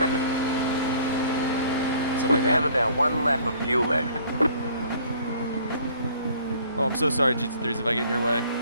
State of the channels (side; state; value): both; inverted; correlation -0.55